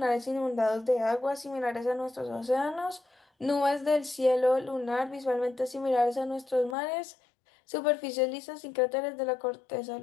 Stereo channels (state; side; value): drops out; right; at 6.8 s